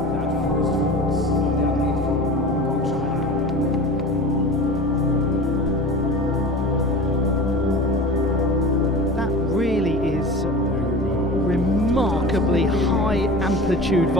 Remarkably high amplitude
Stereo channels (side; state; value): both; normal; correlation 0.34